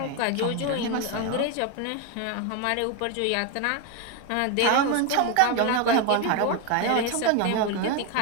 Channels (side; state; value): both; different; correlation 0.01